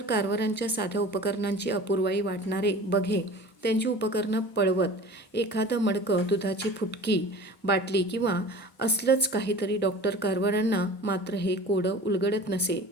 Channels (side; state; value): both; normal; correlation 0.40